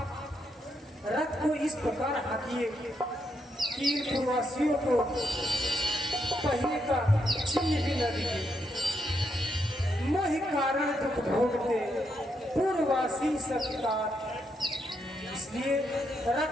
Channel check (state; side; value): normal; both; correlation 0.79